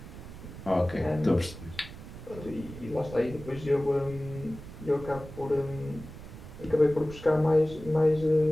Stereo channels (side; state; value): right; noise; rumble, 14 dB below the sound